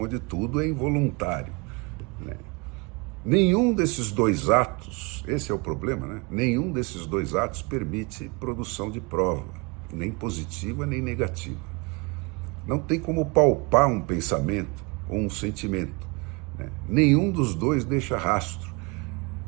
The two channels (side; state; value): left; quieter; 28.7 dB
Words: tudo é involuntário. Nenhum desses dois atos, esse é o problema, nenhum desses dois atos permite produção de prova, nem positiva nem negativa. Não tem como palpar um pensamento ou um sentimento. Nenhum dos dois deixa rastro.